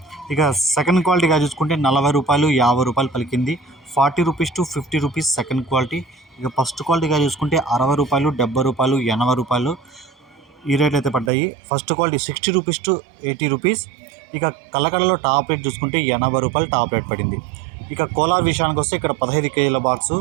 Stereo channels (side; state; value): left; drops out; at 11.3 s